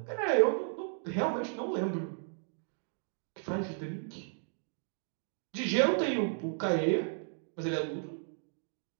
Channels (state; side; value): silent; left; digital silence